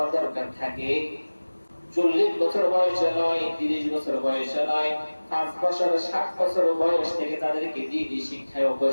দরকার থাকে, 40 বছর বয়সে নয়, 30 বছর বয়সে নয়, 5 বছর 7 বছর বয়স থেকে তাদেরকে দিনই শিক্ষায়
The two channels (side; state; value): both; inverted; correlation -1.00